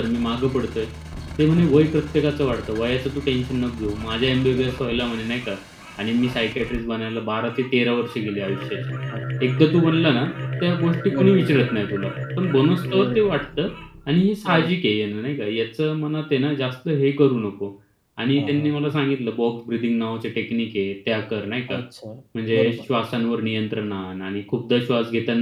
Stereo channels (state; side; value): identical; both; correlation 1.00